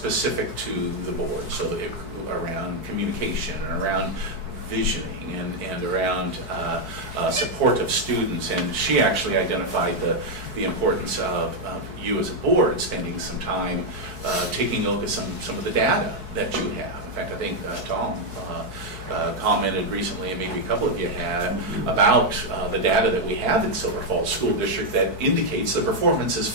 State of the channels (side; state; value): left; late; 4.5 ms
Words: to the board, so around communication and around visioning and around support of students. And she actually identified the importance of you as a board spending some time taking a look at some of the data that you have. In fact, I think Tom commented recently, and maybe a couple of you had, about the data that we have in Silver Falls School District that indicates the performance is